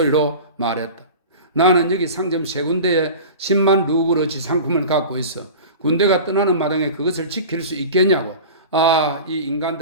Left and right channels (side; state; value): both; inverted; correlation -0.35